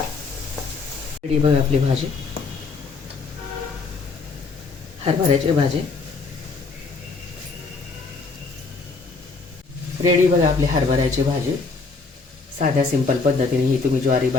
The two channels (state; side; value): quieter; right; 4.2 dB